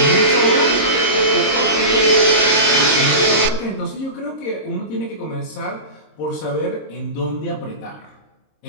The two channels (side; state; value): right; late; 26 ms